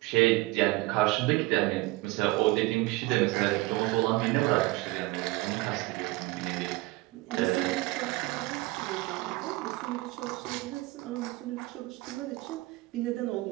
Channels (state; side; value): quieter; left; 20.9 dB